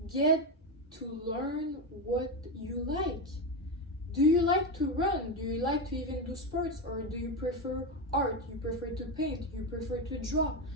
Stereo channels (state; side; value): normal; both; correlation 0.13